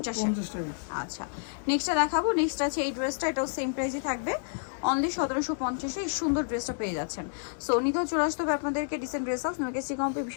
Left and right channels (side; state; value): right; silent; digital silence